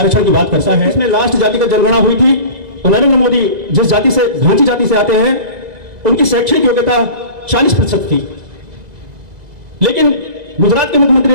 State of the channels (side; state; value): left; late; 2.0 ms